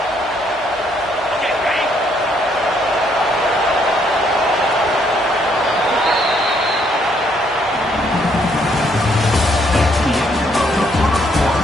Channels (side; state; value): both; normal; correlation 0.70